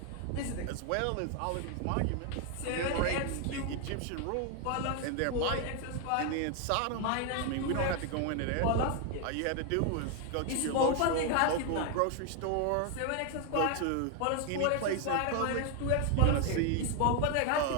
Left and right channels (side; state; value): both; different; correlation 0.01